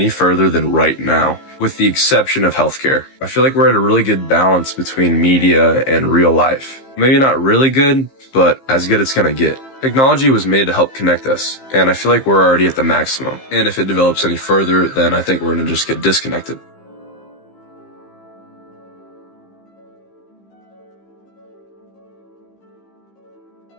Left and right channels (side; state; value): right; late; 15 ms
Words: further than right now, with the exception of healthcare. I feel like we're at a really good balance between media and real life. Maybe not really good, but as good as it's gonna get. Technology was made to help connect us, and I feel like we're already at the maximum. And if it develops any further, then I think we're gonna just get disconnected.